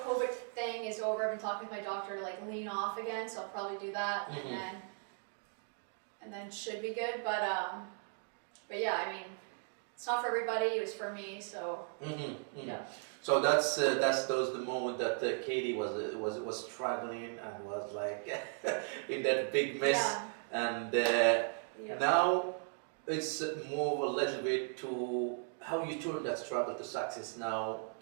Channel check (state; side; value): silent; left; 53 dB below the other